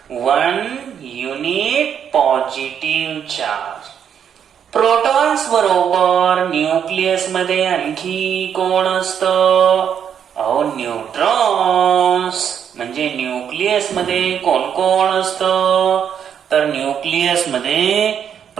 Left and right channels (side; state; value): left; quieter; 8.3 dB